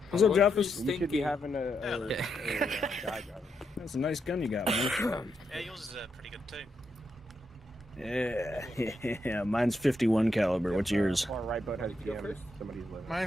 What's up, Jeff? You should be having a guy driver. That's a nice gun you got, man. Yeah, yours is pretty good too. Yeah, mine's 51 caliber. What's yours? Far right boat has DMs. Somebody's living.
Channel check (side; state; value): both; normal; correlation 0.82